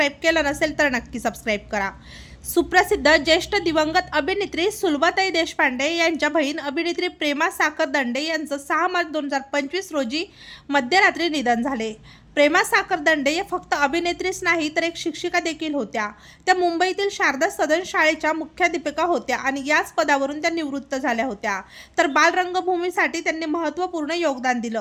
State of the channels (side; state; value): both; identical; correlation 1.00